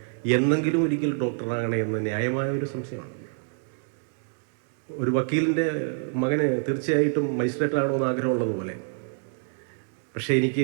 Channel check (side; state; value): left; silent; digital silence